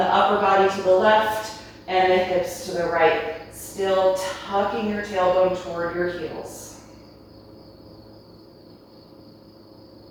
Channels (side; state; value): both; identical; correlation 1.00